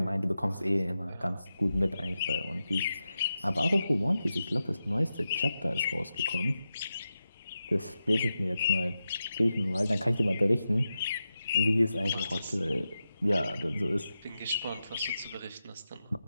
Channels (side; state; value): both; inverted; correlation -0.90